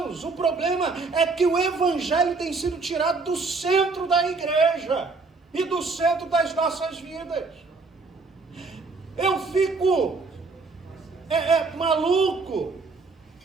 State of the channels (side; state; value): left; quieter; 4.0 dB